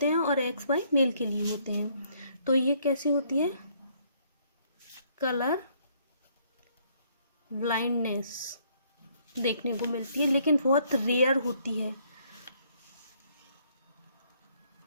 हैं और एक्स वाई मेल के लिए होते हैं। तो ये कैसी होती है, कलर ब्लाइंडनेस देखने को मिलती है लेकिन बहुत रेयर होती है।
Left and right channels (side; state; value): both; inverted; correlation -0.67